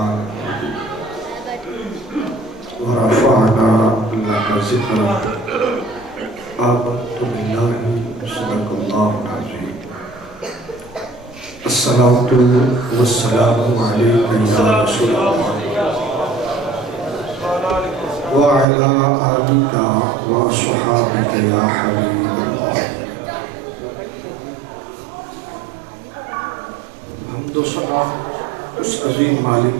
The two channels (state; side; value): drops out; left; at 18.7 s